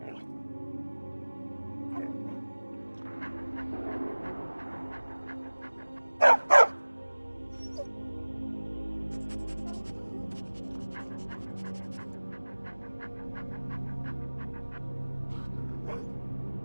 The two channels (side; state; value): both; inverted; correlation -1.00